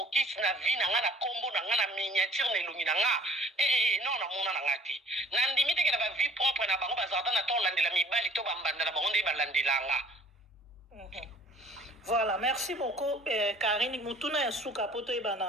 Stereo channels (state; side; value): normal; both; correlation 0.52